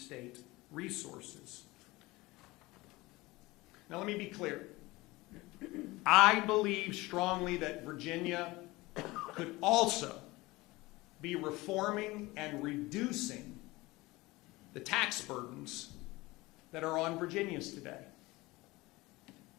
resources. Now let me be clear. I believe strongly that Virginia could also be reforming and reducing the tax burdens that are on Virginians today.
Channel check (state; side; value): quieter; right; 21.1 dB